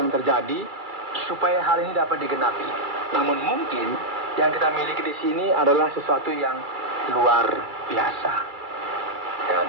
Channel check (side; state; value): left; late; 2.3 ms